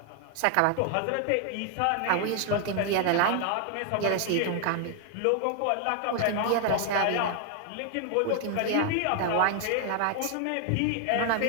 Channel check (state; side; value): different; both; correlation 0.00